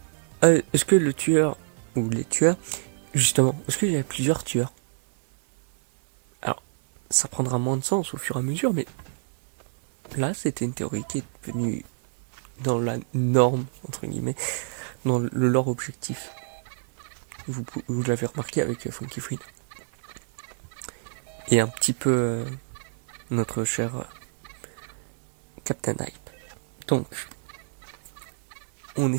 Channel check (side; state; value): left; silent; digital silence